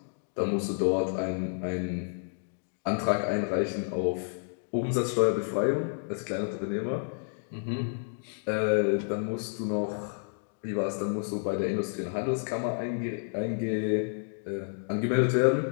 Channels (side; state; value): right; silent; digital silence